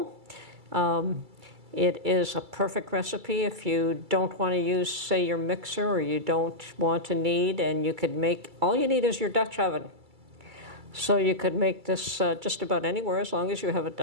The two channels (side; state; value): left; late; 2.3 ms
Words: It is a perfect recipe if you don't want to use, say, your mixer, or you don't want to knead, and you could make, all you need is your Dutch oven. So you could make this just about anywhere as long as you have a